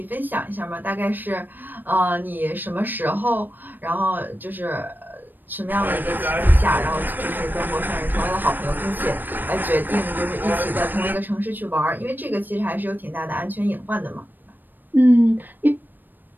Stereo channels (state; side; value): late; left; 0.091 ms